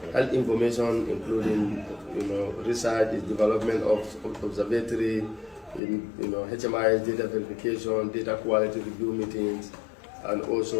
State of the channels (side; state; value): right; drops out; at 5.8 s